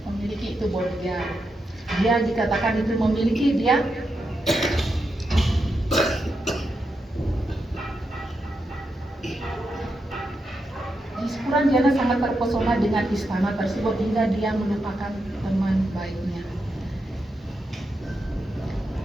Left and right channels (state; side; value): normal; both; correlation 0.85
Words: itu bodyguard. Dia dikatakan itu memiliki dia Puranjana sangat terpesona dengan istana tersebut hingga dia melupakan teman baiknya.